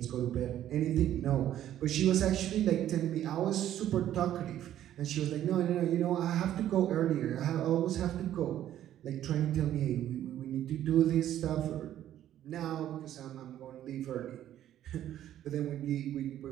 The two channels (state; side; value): quieter; left; 11.8 dB